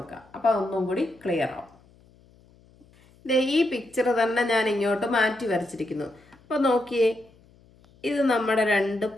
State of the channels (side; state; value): left; noise; hum, 29 dB below the sound